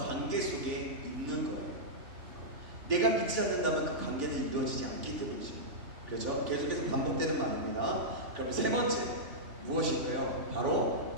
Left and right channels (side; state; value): left; late; 3.4 ms